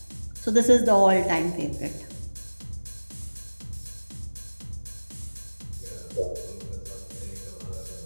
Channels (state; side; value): inverted; both; correlation -1.00